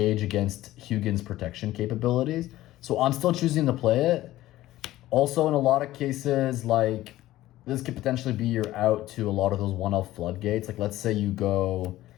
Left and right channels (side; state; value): right; quieter; 15.5 dB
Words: against Hugin's protection capabilities. So I'm still choosing to play it. Also, in a lot of cases, like, this could potentially be your out to a lot of those 1-elf floodgates. Like, let's say you go